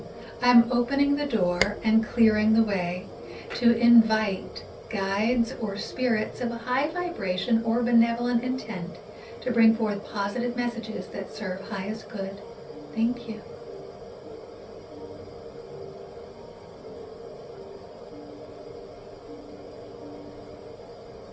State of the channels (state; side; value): identical; both; correlation 1.00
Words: I'm opening the door and clearing the way to invite guides or spirits of a high vibration or benevolent intent to bring forth positive messages that serve highest good. Thank you.